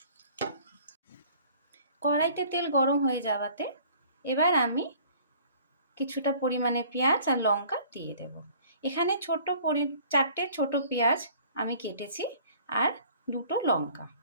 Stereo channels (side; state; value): both; inverted; correlation -0.52